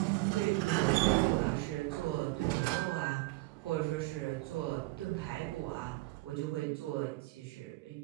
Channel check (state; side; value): quieter; left; 21.4 dB